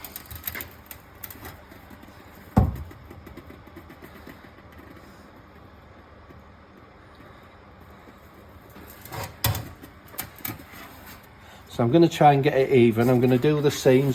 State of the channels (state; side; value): identical; both; correlation 1.00